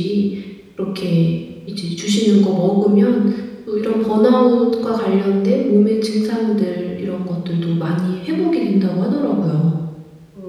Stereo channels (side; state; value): both; identical; correlation 1.00